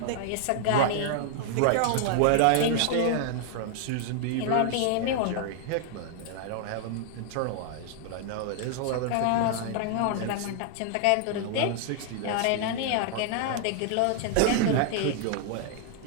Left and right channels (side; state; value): both; different; correlation 0.00